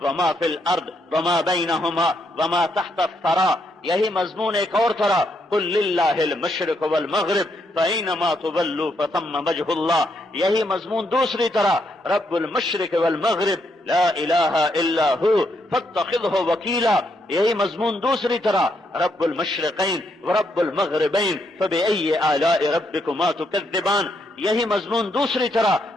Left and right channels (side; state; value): both; normal; correlation 0.77